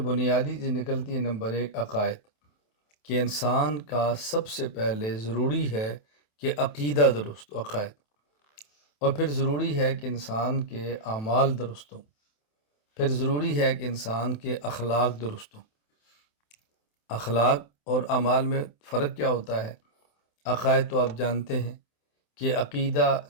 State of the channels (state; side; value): late; right; 27 ms